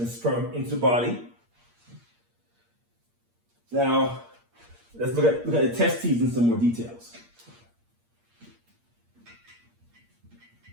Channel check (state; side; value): late; left; 8.6 ms